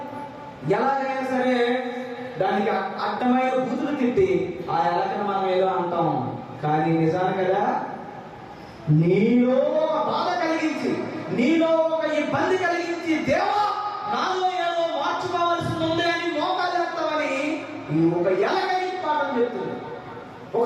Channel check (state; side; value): identical; both; correlation 1.00